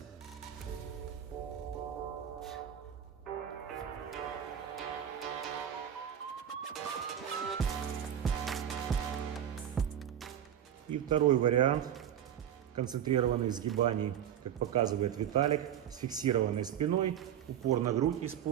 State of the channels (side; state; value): left; quieter; 9.9 dB